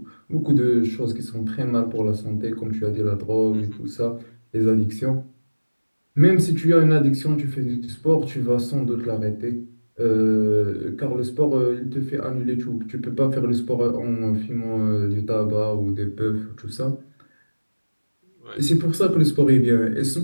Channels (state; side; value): inverted; both; correlation -1.00